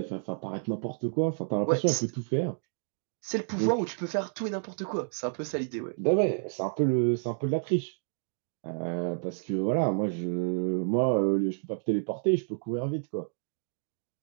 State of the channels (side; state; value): left; silent; digital silence